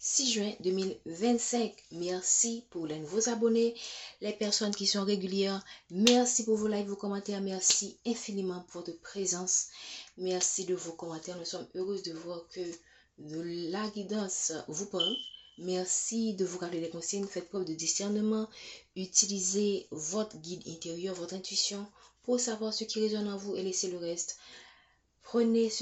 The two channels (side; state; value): both; identical; correlation 1.00